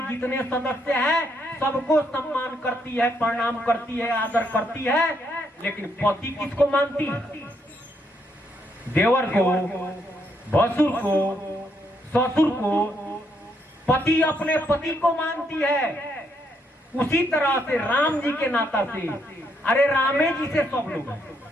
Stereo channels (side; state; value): both; normal; correlation 0.75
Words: जितने सदस्य हैं सबको सम्मान करती है, प्रणाम करती है, आदर करती है। लेकिन पति किसको मानती है? देवर को, भसुर को, ससुर को। पति अपने पति को मानती है। उसी तरह से राम जी के नाता से, अरे रामे जी से सब लोग हैं,